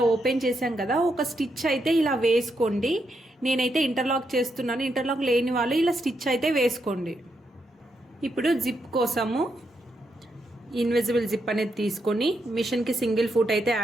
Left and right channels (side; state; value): both; normal; correlation 0.81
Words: ఓపెన్ చేసాం కదా, ఒక స్టిచ్ అయితే ఇలా వేసుకోండి. నేనైతే ఇంటర్లాక్ చేస్తున్నాను. ఇంటర్లాక్ లేని వాళ్ళు ఇలా స్టిచ్ అయితే వేసుకోండి. ఇప్పుడు జిప్ కోసము ఇన్విజిబుల్ జిప్ అనేది తీసుకొని మిషన్కి సింగిల్ ఫుట్ అయితే